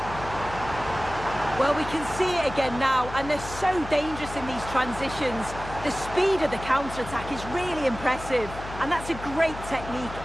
Well, we can see it again now, and they're so dangerous in these transitions. The speed of the counter-attack is really impressive, and that's a great technique,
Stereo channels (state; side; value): noise; left; hum, 11 dB below the sound